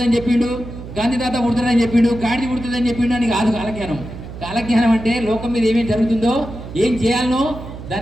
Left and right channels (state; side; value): noise; right; hum, 12 dB below the sound